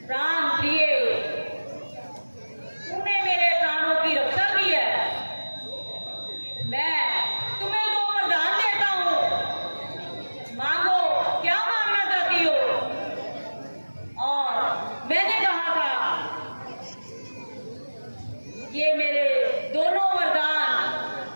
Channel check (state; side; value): inverted; both; correlation -1.00